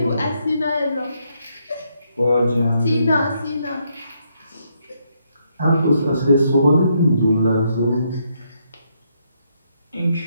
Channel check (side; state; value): both; inverted; correlation -0.76